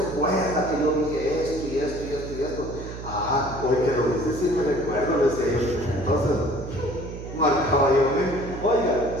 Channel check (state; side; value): noise; right; hum, 10 dB below the sound